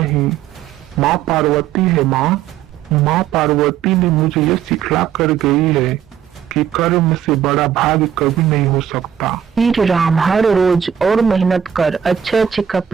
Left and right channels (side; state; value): left; quieter; 9.1 dB